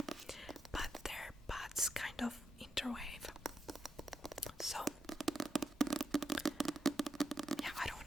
But their paths kind of interweave. So yeah, I don't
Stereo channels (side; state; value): both; normal; correlation 0.84